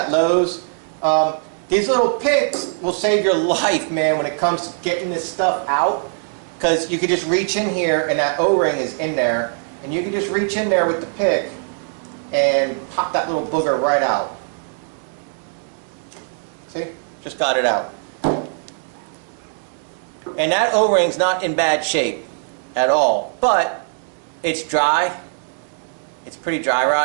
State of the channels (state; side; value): silent; left; digital silence